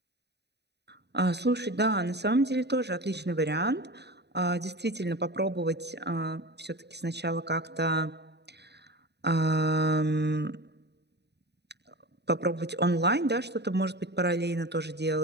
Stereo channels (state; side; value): late; left; 0.49 ms